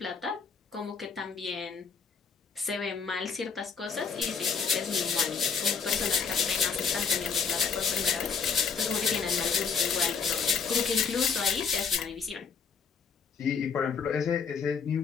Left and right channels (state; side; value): quieter; right; 5.9 dB